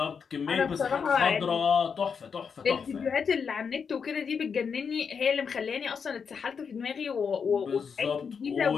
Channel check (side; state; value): right; quieter; 6.2 dB